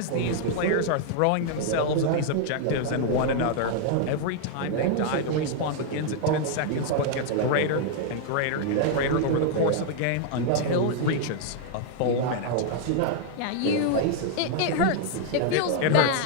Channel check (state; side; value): different; both; correlation 0.00